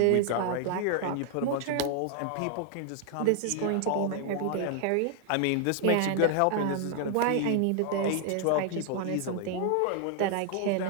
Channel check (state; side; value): different; both; correlation 0.00